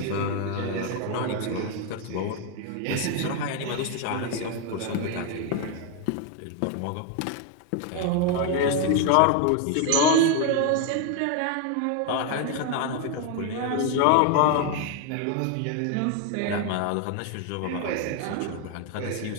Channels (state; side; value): different; both; correlation 0.01